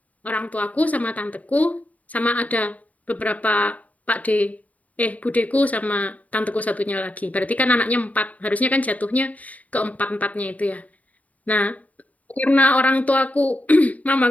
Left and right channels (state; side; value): late; right; 0.071 ms